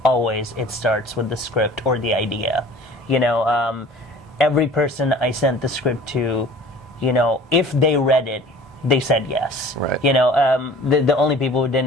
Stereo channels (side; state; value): both; normal; correlation 0.46